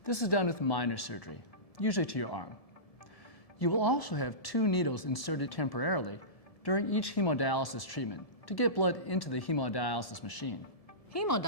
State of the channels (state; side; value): late; right; 1.7 ms